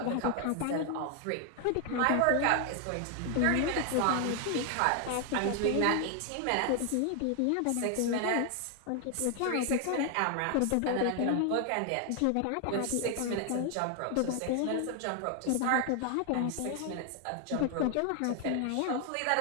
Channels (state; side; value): different; both; correlation 0.00